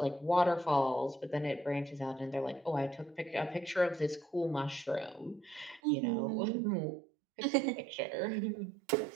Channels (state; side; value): drops out; left; at 5.8 s